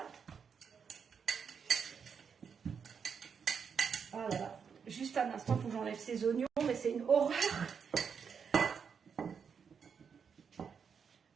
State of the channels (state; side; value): quieter; left; 6.6 dB